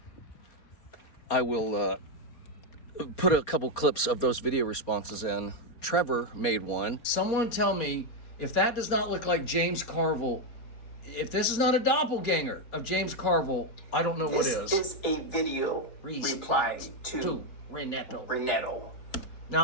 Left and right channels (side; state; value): right; late; 4.3 ms